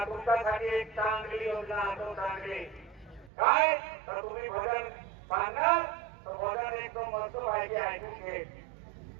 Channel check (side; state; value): left; drops out; at 3.3 s